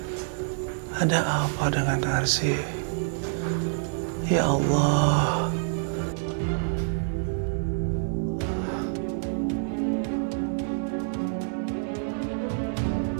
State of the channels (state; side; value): silent; left; digital silence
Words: Ada apa dengan Narsi? Ya Allah.